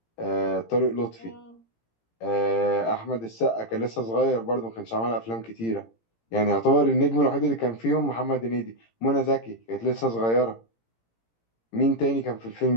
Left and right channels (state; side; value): late; right; 18 ms